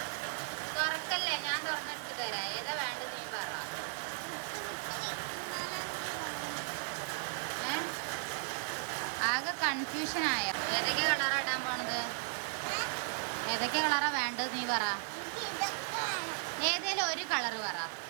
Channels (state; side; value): silent; left; 54 dB below the other